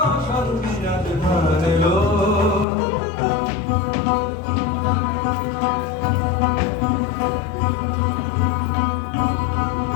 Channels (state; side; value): drops out; right; at 2.7 s